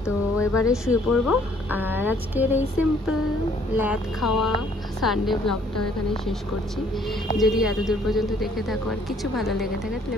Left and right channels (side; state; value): both; normal; correlation 0.62